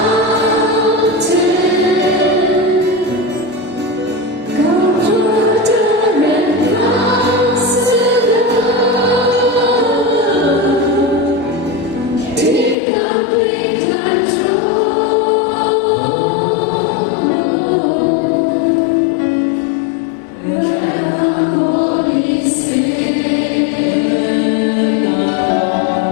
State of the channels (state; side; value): drops out; right; at 12.8 s